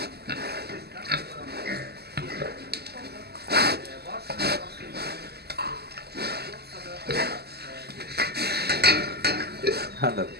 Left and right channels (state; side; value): late; left; 0.46 ms